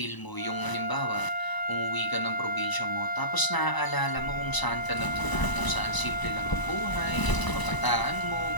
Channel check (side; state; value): right; late; 1.0 ms